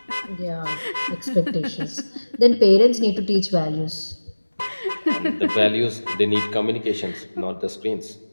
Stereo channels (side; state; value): both; inverted; correlation -1.00